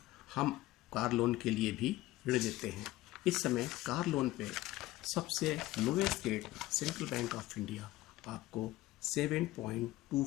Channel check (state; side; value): quieter; right; 17.1 dB